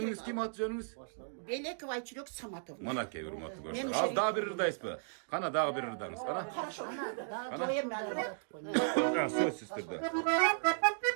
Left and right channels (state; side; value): silent; left; digital silence